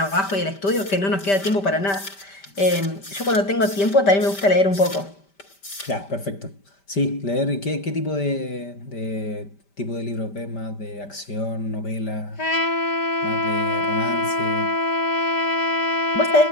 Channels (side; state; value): right; late; 5.1 ms